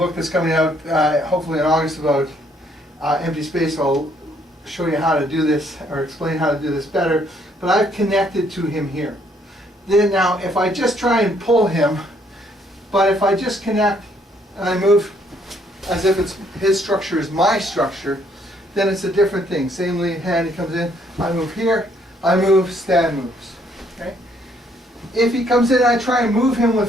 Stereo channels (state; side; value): normal; both; correlation 0.67